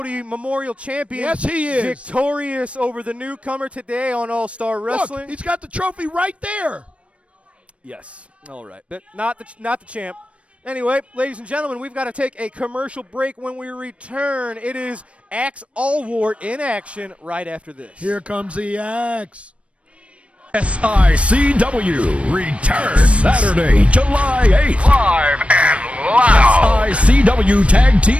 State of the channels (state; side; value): late; left; 0.062 ms